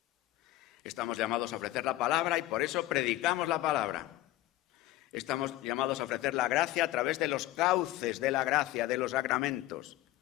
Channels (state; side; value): quieter; right; 15.9 dB